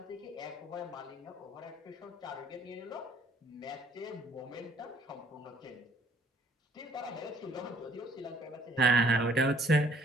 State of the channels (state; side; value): normal; both; correlation 0.61